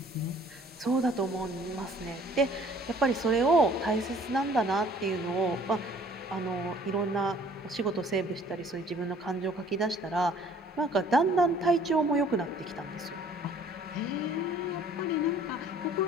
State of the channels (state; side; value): normal; both; correlation 0.55